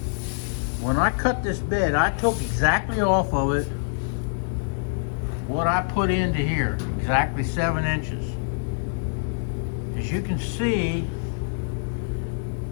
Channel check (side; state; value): right; silent; digital silence